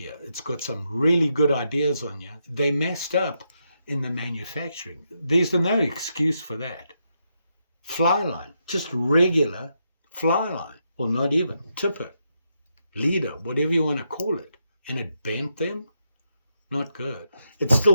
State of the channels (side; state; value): both; inverted; correlation -0.82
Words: It's got some really good ideas on here. They messed up in the manufacturing. There's no excuse for that. Fly line, just regular fly line, or not even, tipper, leader, whatever you want to call it. And it bent them? Not good. It's